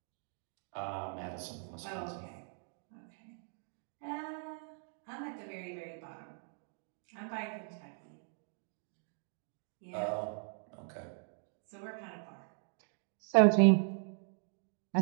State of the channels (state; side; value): silent; left; 52 dB below the other